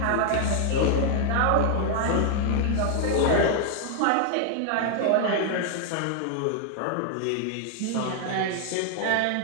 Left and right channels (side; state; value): both; different; correlation 0.00